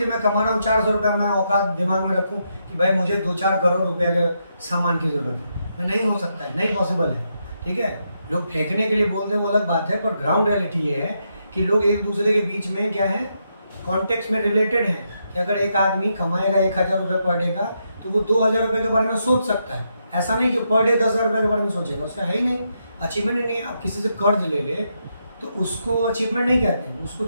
मैं कमा रहा हूँ 400 रुपये, मैं औकात दिमाग में रखूँ कि भाई मुझे 2-4 करोड़ रुपए के सामान की जरूरत है, मैं नहीं हो सकता है, नहीं पॉसिबल है। ठीक है, लोग फेंकने के लिए बोलते हैं वो अलग बात है, पर ग्राउंड रियलिटी ये है कि लोग एक दूसरे के बीच में क्या है, कॉन्टेक्स्ट में रिलेटेड है कि अगर एक आदमी कमाएगा 1000 रुपये पर डे का, तो वो 2000 रुपये के बारे में सोच सकता है। ऐसा नहीं कि पर डे 10,000 रुपये के बारे में सोचेगा, उसका है ही नहीं, अचीवमेंट ही नहीं। आप किसी से कर्ज ले ले तो उसको अचीवमेंट नहीं कहते हैं, उसको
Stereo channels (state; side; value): inverted; both; correlation -0.81